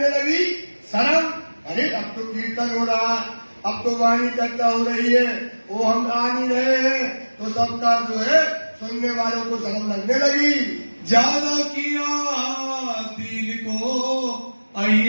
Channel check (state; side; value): inverted; both; correlation -1.00